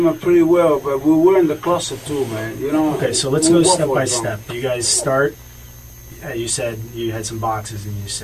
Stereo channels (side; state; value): both; identical; correlation 1.00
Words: pretty well, but we were in the closet too, man. You know. Okay, so let's go step by step. You guys start. You said you had some boxes and you